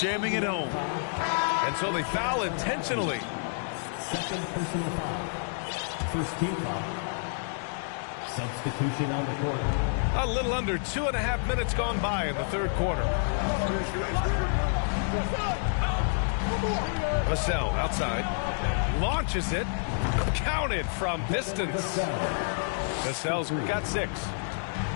jamming it home. And so they foul intentionally. Second personal foul. First team foul. Substitution on the court. A little under 2.5 minutes gone by in the third quarter. Vassell outside. Launches it. Counted from distance. Vassell's got 6.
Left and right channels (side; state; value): right; silent; digital silence